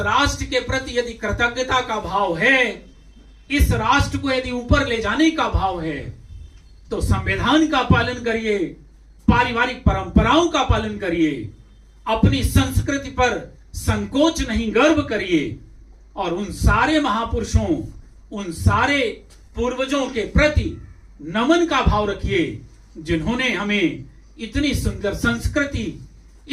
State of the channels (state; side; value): identical; both; correlation 1.00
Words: के प्रति यदि कृतज्ञता का भाव है, इस राष्ट्र को यदि ऊपर ले जाने का भाव है, तो संविधान का पालन करिए, पारिवारिक परंपराओं का पालन करिए, अपनी संस्कृति पर संकोच नहीं गर्व करिए, और उन सारे महापुरुषों, उन सारे पूर्वजों के प्रति नमन का भाव रखिए जिन्होंने हमें इतनी सुंदर संस्कृति,